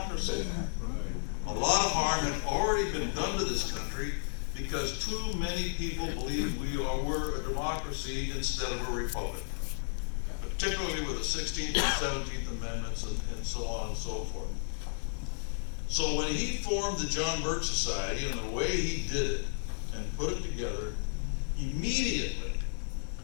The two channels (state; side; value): silent; right; digital silence